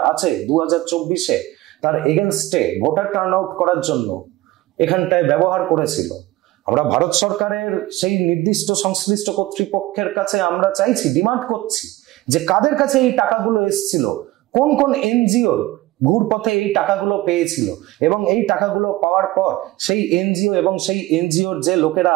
আছে 2024-এ তার এগেনস্টে ভোটার টার্ন আউট করার জন্য এখানটায় ব্যবহার করেছিল। আমরা ভারত সরকারের সেই নির্দিষ্ট সংশ্লিষ্ট কর্তৃপক্ষের কাছে আমরা চাইছি, ডিমান্ড করছি যে কাদের কাছে এই টাকাগুলো এসেছিল, কোন কোন এনজিও ঘুরপথে এই টাকাগুলো পেয়েছিল, এবং এই টাকাগুলো পাওয়ার পর সেই এনজিও এবং সেই এনজিওর যে লোকেরা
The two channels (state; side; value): quieter; left; 18.0 dB